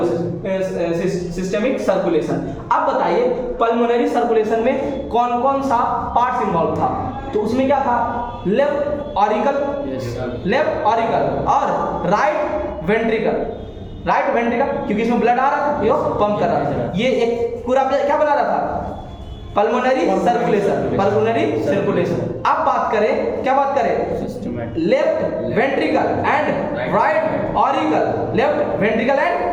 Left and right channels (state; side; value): identical; both; correlation 1.00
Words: सिस्टेमिक सर्कुलेशन। अब बताइए पल्मोनरी सर्कुलेशन में कौन कौन सा पार्ट्स इन्वॉल्व था, तो उसमें क्या था, लेफ्ट ऑरिकल और राइट वेंट्रिकल, क्योंकि इसमें ब्लड आ रहा था, ये पंप कर रहा था, ये एक पूरा क्या बना रहा था, पल्मोनरी सर्कुलेशन। अब बात करें, क्या बात करें, left ventricle and right auricle, left ventricle